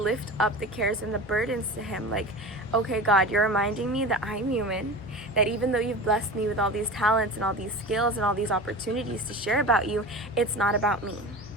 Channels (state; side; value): normal; both; correlation 0.31